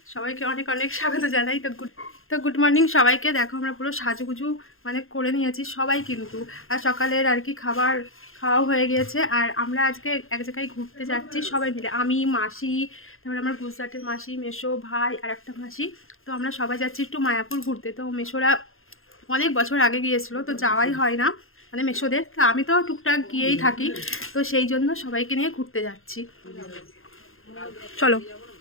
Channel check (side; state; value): right; late; 0.60 ms